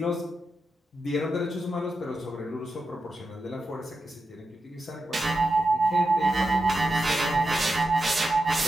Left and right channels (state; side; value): normal; both; correlation 0.89